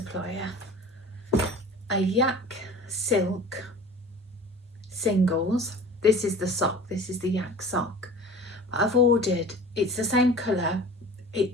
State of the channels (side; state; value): both; normal; correlation 0.41